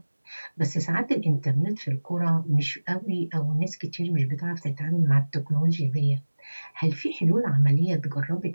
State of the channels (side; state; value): both; inverted; correlation -1.00